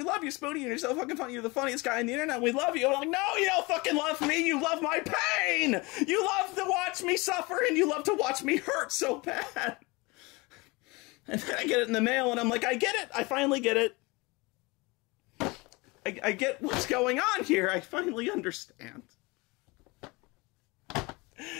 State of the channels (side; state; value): right; quieter; 25.2 dB